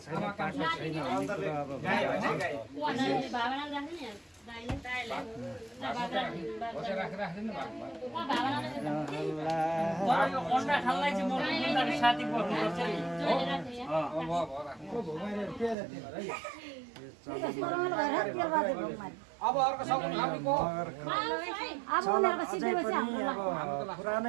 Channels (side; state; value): left; drops out; at 15.8 s